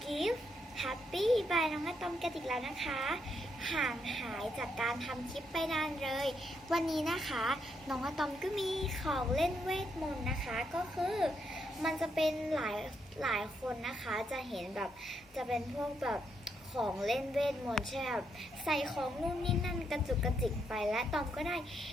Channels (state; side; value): normal; both; correlation 0.78